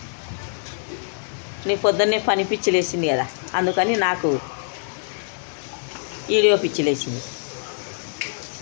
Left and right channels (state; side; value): silent; right; digital silence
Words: నీ పొద్దున్నే పని పిచ్చిలు వేసింది కదా, అందుకని నాకు వీడియో పిచ్చిలు వేసింది.